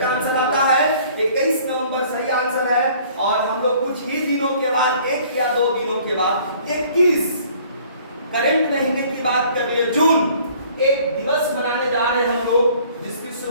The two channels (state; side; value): inverted; both; correlation -0.55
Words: आंसर आता है 21 नवंबर सही आंसर है। और हम लोग कुछ ही दिनों के बाद, 1 या 2 दिनों के बाद 21 करंट महीने की बात कर लिए, जून, एक दिवस मनाने जा रहे हैं हम लोग, जिसकी